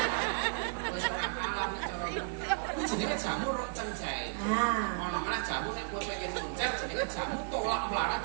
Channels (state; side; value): silent; left; digital silence